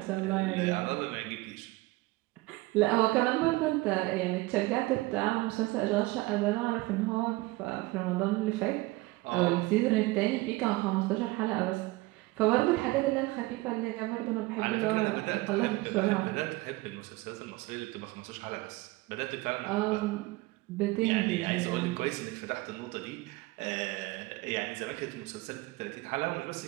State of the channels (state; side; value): quieter; left; 21.1 dB